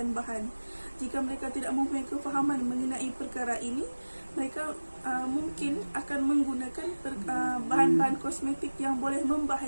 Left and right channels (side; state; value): both; inverted; correlation -1.00